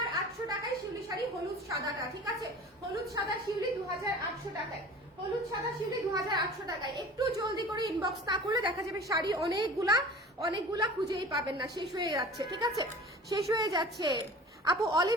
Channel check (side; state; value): both; normal; correlation 0.41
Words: টাকায় শিউলি শাড়ি, হলুদ সাদাটা, ঠিক আছে। হলুদ সাদা শিউলি 2,800 টাকায়, হলুদ সাদা শিউলি 2,800 টাকায়। একটু জলদি করে ইনবক্স না করলে দেখা যাবে শাড়ি অনেকগুলা খুঁজেই পাবেন না, শেষ হয়ে যাচ্ছে, ঠিক আছে, শেষ হয়ে যাচ্ছে। আপু